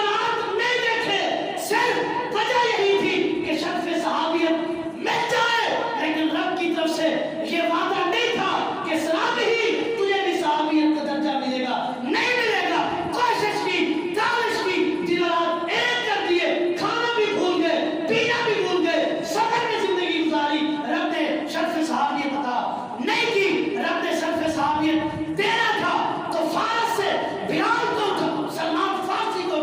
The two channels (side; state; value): both; identical; correlation 1.00